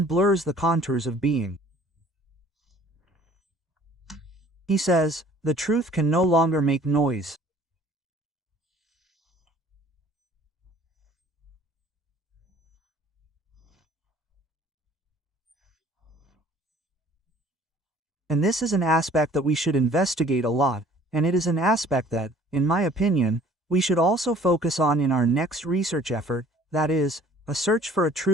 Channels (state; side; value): normal; both; correlation 0.53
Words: blurs the contours of being. He says, the truth can no longer make noise. And this is an aspect that we should investigate a lot, and it is an aspect that, in my opinion, we should also focus on in our next research effort, that is, a search for a